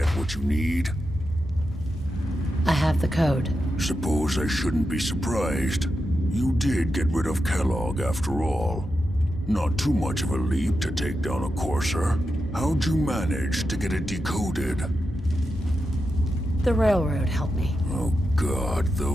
what you need? I have the code. Suppose I shouldn't be surprised. You did get rid of Kellogg after all. Not too much of a leap to take down a courser. How'd you manage to get it decoded? The railroad helped me. Oh God,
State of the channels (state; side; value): normal; both; correlation 0.88